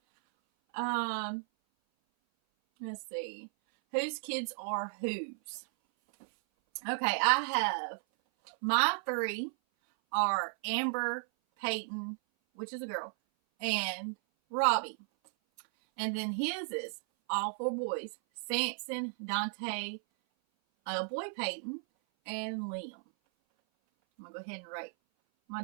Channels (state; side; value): silent; left; 55 dB below the other